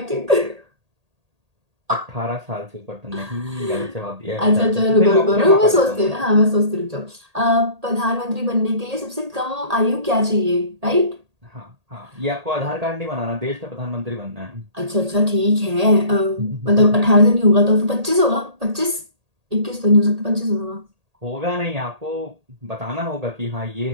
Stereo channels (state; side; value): late; left; 1.8 ms